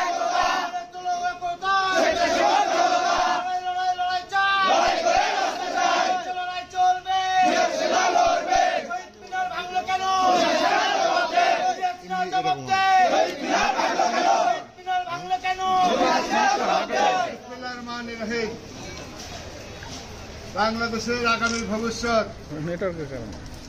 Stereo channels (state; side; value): identical; both; correlation 1.00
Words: বাংলাদেশের আগামী ভবিষ্যৎ,